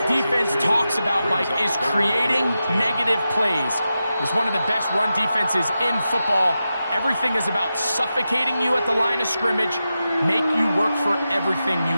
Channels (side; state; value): both; inverted; correlation -0.91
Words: defense talks about, Mike, is creating negative plays. It's one of the best run defenses in football. Everything is about suffocating you at the line of scrimmage, make you work for everything